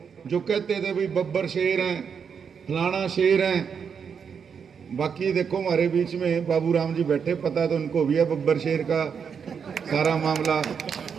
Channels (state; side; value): quieter; left; 6.7 dB